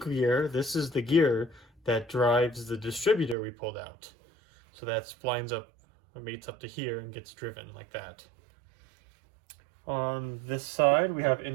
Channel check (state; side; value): drops out; left; at 3.4 s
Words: gear. This is the gear that drives the distributor we pulled out. So that lines up, mates up to here and gets driven like that. On this side, we